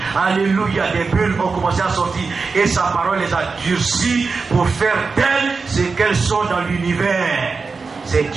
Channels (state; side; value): quieter; left; 4.6 dB